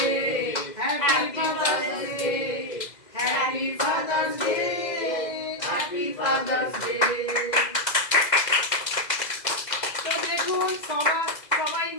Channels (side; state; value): right; late; 2.0 ms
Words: happy father's day, happy father's day, happy father's day. তো দেখুন সবাই